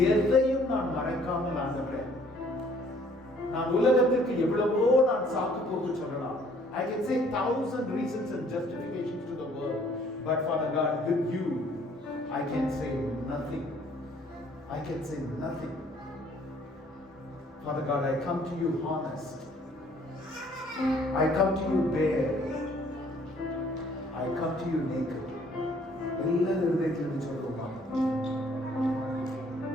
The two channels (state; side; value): normal; both; correlation 0.60